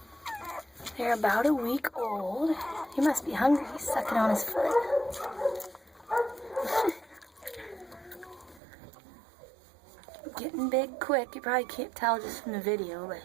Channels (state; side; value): drops out; left; at 8.6 s